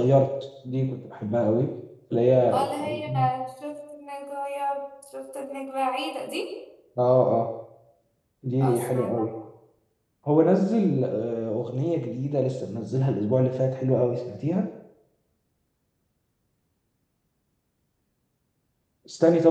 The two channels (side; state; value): both; identical; correlation 1.00